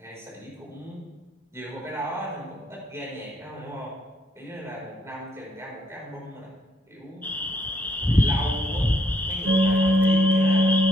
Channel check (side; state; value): both; normal; correlation 0.71